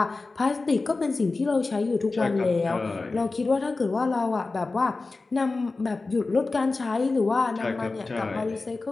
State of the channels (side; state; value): right; quieter; 3.6 dB